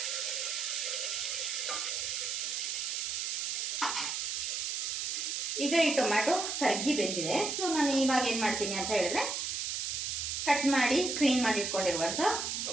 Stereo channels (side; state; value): right; noise; hiss, 1 dB below the sound